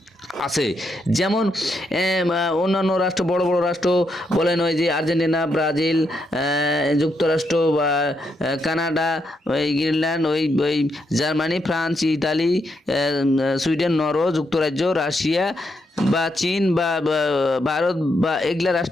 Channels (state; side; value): normal; both; correlation 0.80